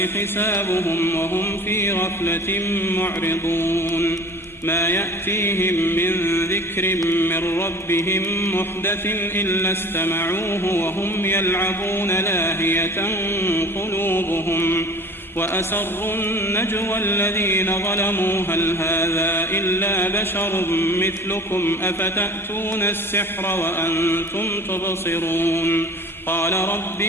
وهم في غفلة معرضون ما يأتيهم من ذكر من ربهم محدث إلا استمعوه وهم يلعبون لاهية قلوبهم وأسروا النجوى الذين ظلموا هل هذا إلا بشر مثلكم أفتأتون السحر وأنتم تبصرون قال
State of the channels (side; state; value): both; normal; correlation 0.43